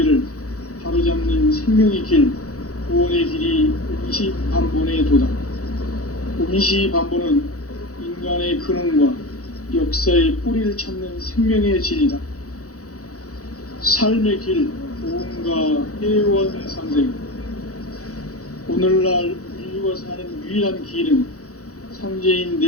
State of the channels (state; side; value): late; right; 0.66 ms